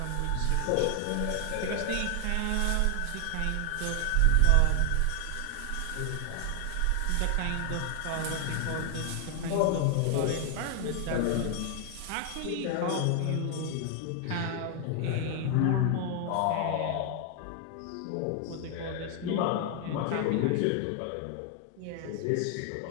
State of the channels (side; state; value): both; different; correlation 0.00